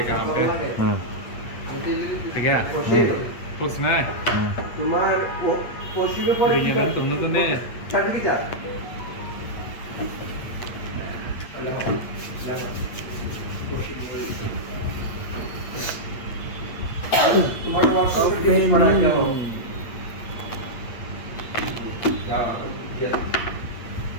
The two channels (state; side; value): late; right; 8.6 ms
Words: आप पे ठीक है कुछ ना তোমার পশ্চিমে পড়ে ये ना तुमने तो नहीं চাটকি যা তোমার ওয়ার্কশপ ফিনিশ করা কি হবে যা